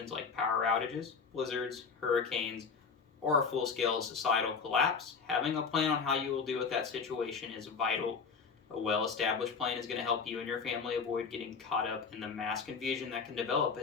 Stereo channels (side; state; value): right; quieter; 5.5 dB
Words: like power outages, blizzards, hurricanes, or a full-scale societal collapse, having a plan on how you will deal with that situation is vital. A well-established plan is going to help you and your family avoid getting caught up in the mass confusion that can develop